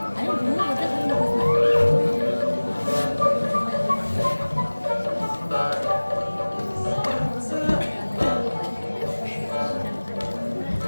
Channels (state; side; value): inverted; both; correlation -1.00